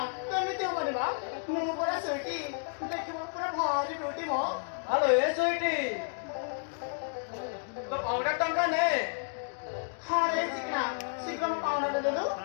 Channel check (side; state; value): right; silent; digital silence